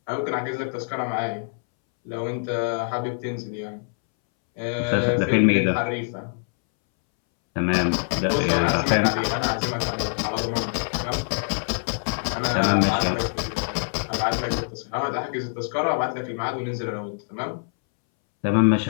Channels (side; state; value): right; silent; 62 dB below the other